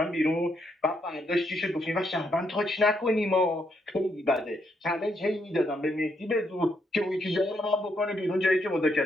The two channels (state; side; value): normal; both; correlation 0.76